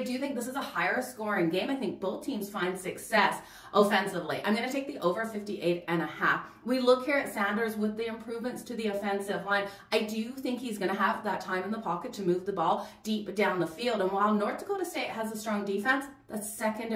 think this is a higher scoring game. I think both teams find success offensively. I'm going to take the over 58.5. We look here at Sanders with the improvements to the offensive line. I do think he's going to have that time in the pocket to move the ball deep down the field. And while North Dakota State has a strong defense, the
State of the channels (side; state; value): both; identical; correlation 1.00